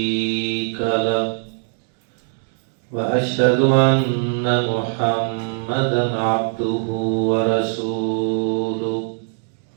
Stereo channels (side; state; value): left; silent; 65 dB below the other